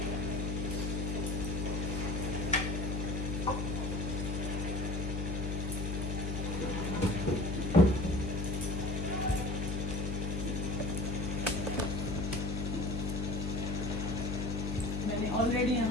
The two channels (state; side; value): noise; left; hum, 2 dB below the sound